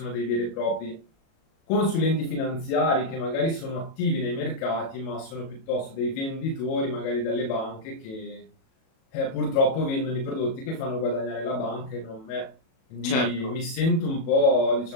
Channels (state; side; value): late; right; 37 ms